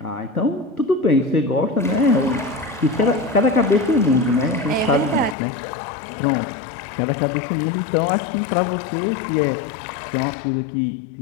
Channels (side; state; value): right; drops out; at 5.4 s